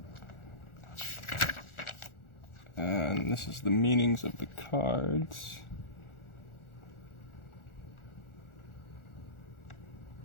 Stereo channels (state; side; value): late; right; 1.4 ms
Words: And this is the meanings of the cards.